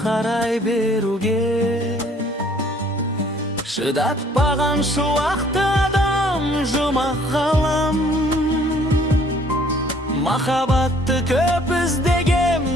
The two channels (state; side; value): normal; both; correlation 0.59